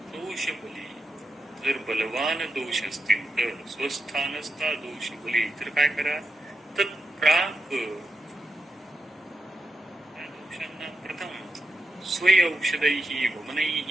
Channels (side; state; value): both; normal; correlation 0.86